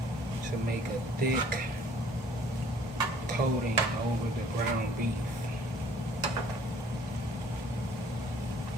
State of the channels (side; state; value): both; normal; correlation 0.56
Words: to make a thick coating over the ground beef.